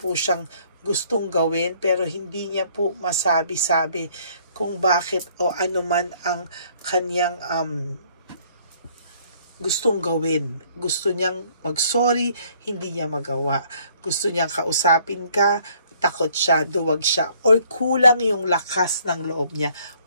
siyang gustong gawin, pero hindi niya po masabi-sabi kung bakit o ano man ang kanyang gustong gawin. Gusto niyang mag-sorry, hindi niya magawa. Gusto niyang kausapin ka, takot siya, duwag siya, or kulang yung lakas ng loob niya.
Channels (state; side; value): inverted; both; correlation -0.61